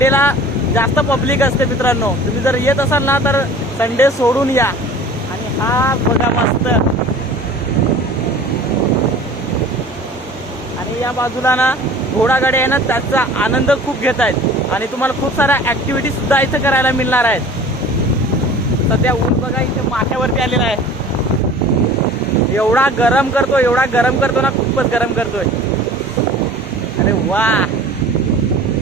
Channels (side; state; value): both; normal; correlation 0.44